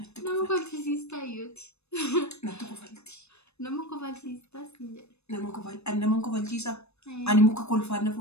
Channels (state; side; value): late; right; 0.81 ms